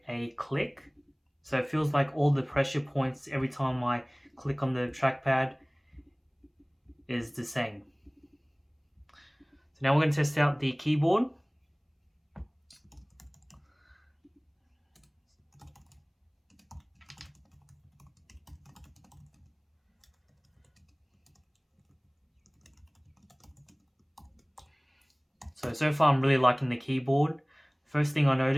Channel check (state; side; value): identical; both; correlation 1.00